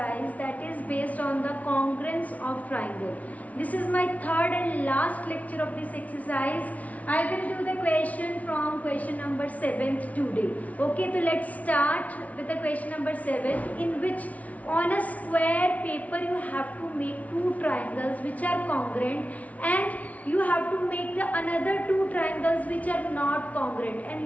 that is based on the congruence of triangle. This is my third and last lecture of this exercise. I will do the question from question number 7 today. Okay, so let's start with the question number 7, in which on a square paper you have to make two triangles which are congruent, and you have to make the another two triangles which are not congruent, and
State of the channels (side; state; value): right; late; 0.069 ms